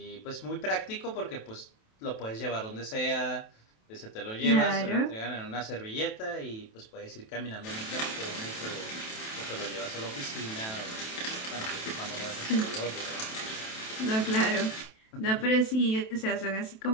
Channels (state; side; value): late; right; 27 ms